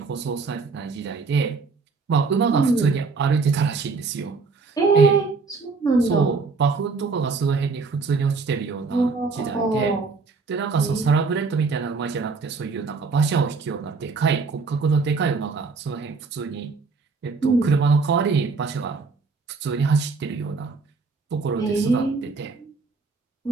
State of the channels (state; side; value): quieter; left; 4.5 dB